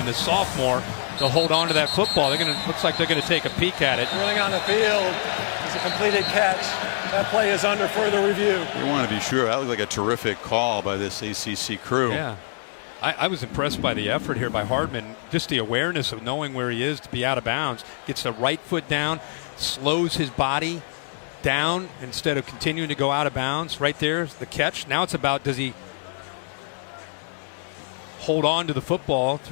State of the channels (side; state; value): right; silent; digital silence